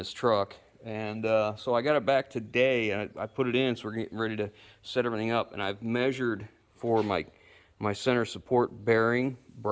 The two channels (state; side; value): identical; both; correlation 1.00